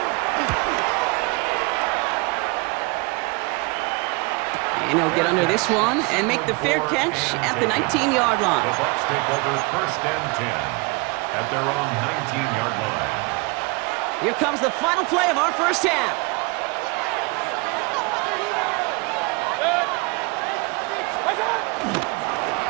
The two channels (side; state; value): left; quieter; 28.3 dB